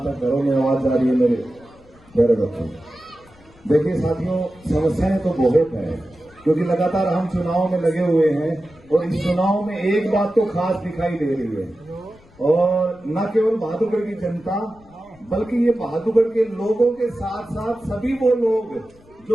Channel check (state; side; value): noise; left; rumble, 27 dB below the sound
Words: तक घरों में आवाज जा रही है मेरे प्यारे बच्चों। देखिए साथियों, समस्याएं तो बहुत है क्योंकि लगातार हम चुनाव में लगे हुए हैं और इस चुनाव में एक बात तो खास दिखाई दे रही है और न केवल बहादुरगढ़ की जनता बल्कि ये बहादुरगढ़ के लोगों के साथ साथ सभी वो लोग